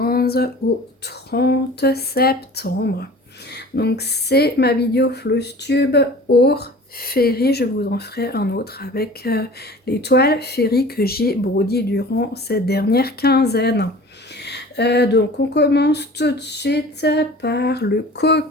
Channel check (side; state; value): both; normal; correlation 0.42